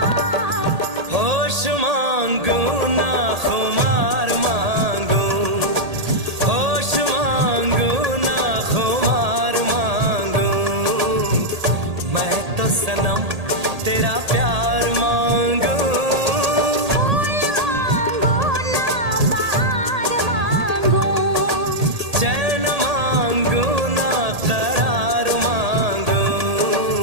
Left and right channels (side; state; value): left; late; 1.8 ms